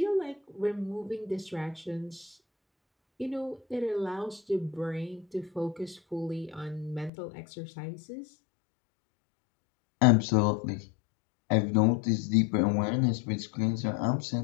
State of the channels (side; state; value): right; drops out; at 7.1 s